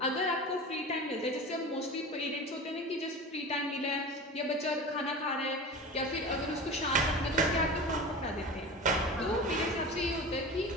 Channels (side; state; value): both; normal; correlation 0.32